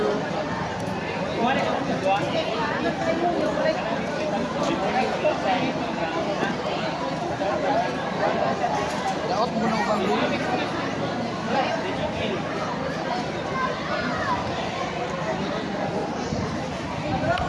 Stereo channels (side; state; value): both; identical; correlation 1.00